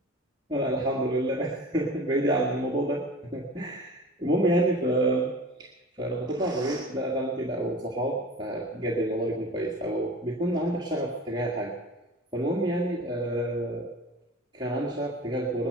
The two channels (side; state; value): both; normal; correlation 0.38